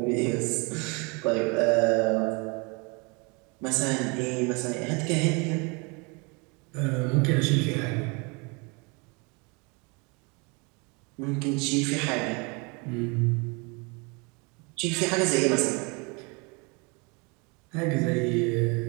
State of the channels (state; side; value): quieter; left; 30.3 dB